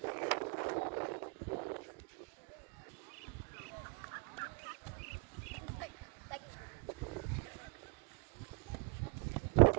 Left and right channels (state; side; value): quieter; left; 30.7 dB